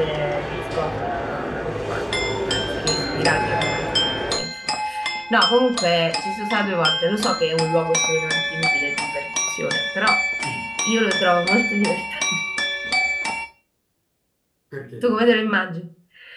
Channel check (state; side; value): identical; both; correlation 1.00